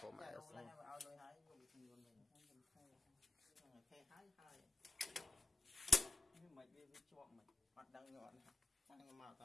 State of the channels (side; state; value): right; quieter; 3.5 dB